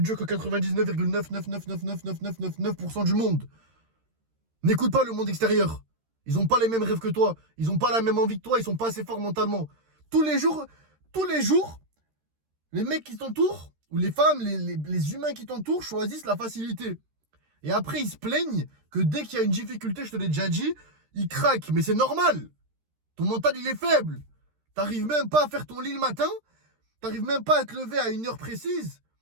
que 99,9999999% du monde. N'écoute pas le monde extérieur. Ils n'ont pas les mêmes rêves que toi. Ils n'ont pas la même envie que toi. Ils sont pas assez forts mentalement. Tous les jours, les mecs qui t'entourent, ou les femmes, les humains qui t'entourent choisissent la facilité. Et après, ils se plaignent que dès qu'il y a une difficulté, je te l'ai déjà dit, ils craquent. Mais c'est normal. Ton mental, il est faible. T'arrives même pas à faire ton lit le matin. T'arrives même pas à te lever à une heure précise.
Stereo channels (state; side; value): late; left; 13 ms